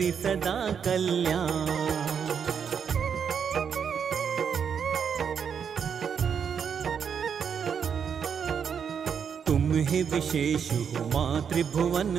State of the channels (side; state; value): left; quieter; 7.2 dB